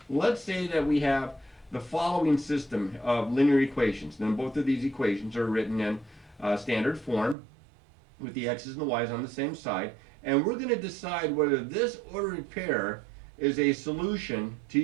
let's say that we have the following system of linear equations. Then both of these equations are written in standard form, with the x's and the y's on the same side, and we're going to decide whether this ordered pair is a solution to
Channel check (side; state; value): left; drops out; at 7.4 s